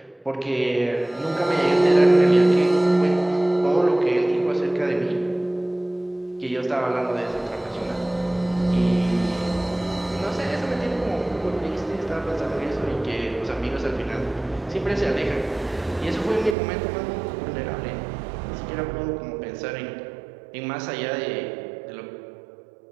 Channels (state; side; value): drops out; left; at 16.6 s